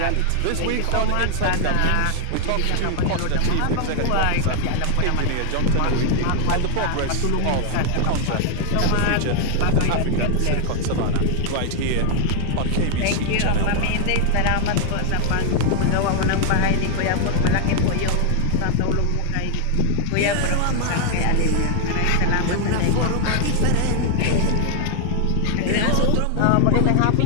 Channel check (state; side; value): different; both; correlation 0.00